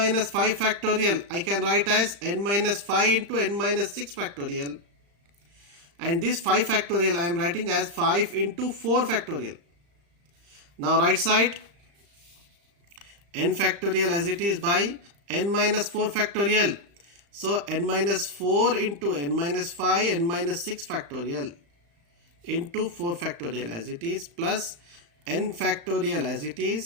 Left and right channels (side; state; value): left; late; 35 ms